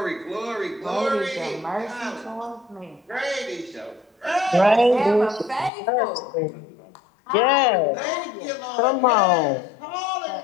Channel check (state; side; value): drops out; right; at 5.7 s